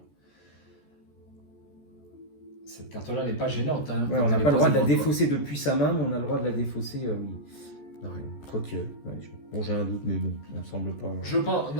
n'est pas gênante. Hein, Ouais, on n'a pas le droit de la défausser depuis sa main, mais on a le droit de la défausser, oui. Quoique, bon, j'ai un doute, mais bon, ça ne me semble pas. Je pense,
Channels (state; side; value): late; right; 14 ms